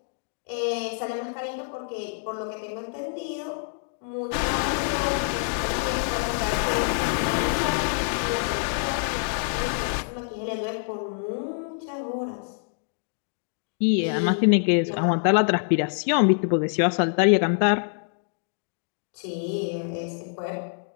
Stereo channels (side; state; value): right; silent; digital silence